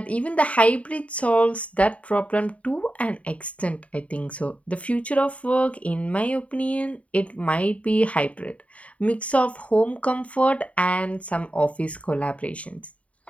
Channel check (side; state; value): right; late; 0.066 ms